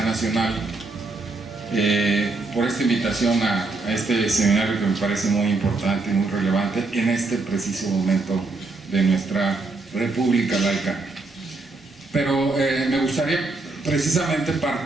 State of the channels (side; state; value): left; quieter; 3.4 dB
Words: Nacional por esta invitación a este seminario que me parece muy importante y muy relevante en este preciso momento de nuestra República laica. Pero me gustaría precisamente